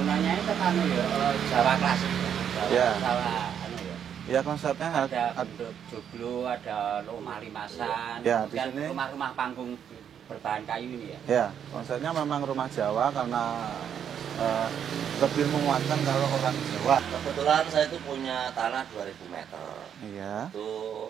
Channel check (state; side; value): quieter; left; 8.6 dB